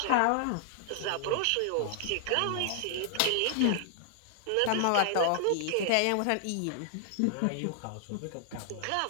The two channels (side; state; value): both; different; correlation 0.00